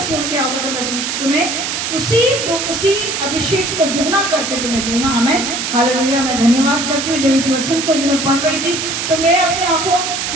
मुड़ के आओगे तो मैं तुम्हें उसी अभिषेक को दुगना करके तुम्हें दूंगा। हमें हालेलुया। मैं धन्यवाद करती हूँ। जब इस वचन को जब मैं पढ़ रही थी तो मैं अपनी आंखों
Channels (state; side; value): noise; right; hiss, 3 dB below the sound